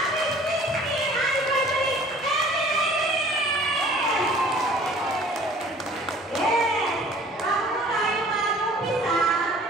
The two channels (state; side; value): normal; both; correlation 0.50